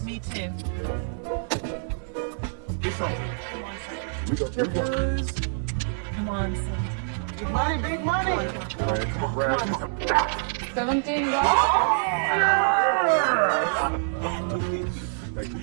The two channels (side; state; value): left; silent; digital silence